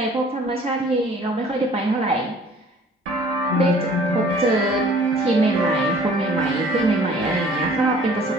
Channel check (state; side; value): normal; both; correlation 0.53